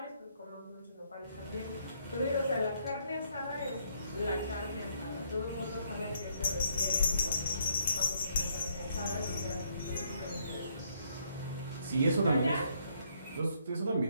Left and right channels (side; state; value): both; inverted; correlation -0.70